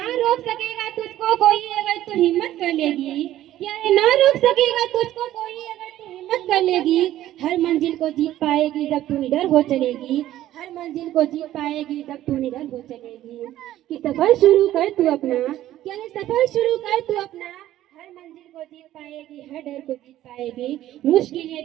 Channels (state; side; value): quieter; left; 13.5 dB